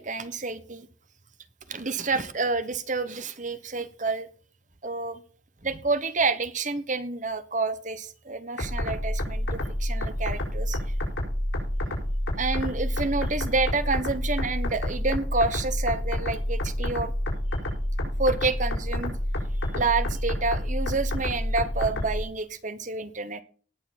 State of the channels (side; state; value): both; normal; correlation 0.34